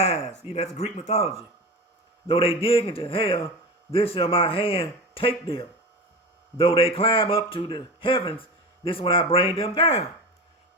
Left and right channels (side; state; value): both; normal; correlation 0.27